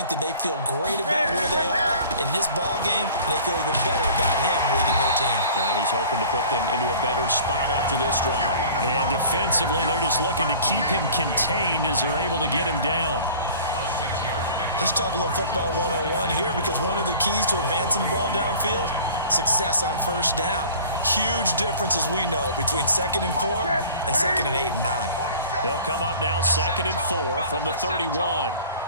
that they feel great about where they are in this ball game, and they feel even better about him leading their team. Now he's hoping to put them into a better spot after this drive. And defensively, they're just looking to keep him contained as they're able to get him down. Let's talk a little football 101 here, because one of the keys to advancing the ball downfield, success on first down. Huge difference, as we know, between 2nd and 4 and 2nd and 8 and 9. They'll come up now 2nd and 4 from the 31. A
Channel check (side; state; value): both; inverted; correlation -0.45